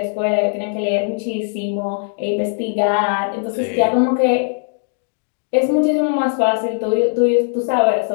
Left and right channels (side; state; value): right; silent; 58 dB below the other